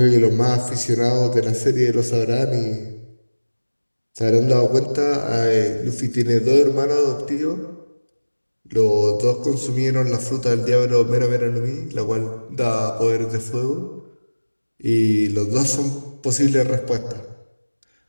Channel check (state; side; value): inverted; both; correlation -1.00